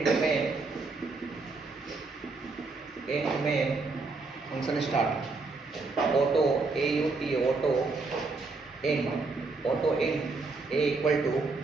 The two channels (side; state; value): left; quieter; 3.9 dB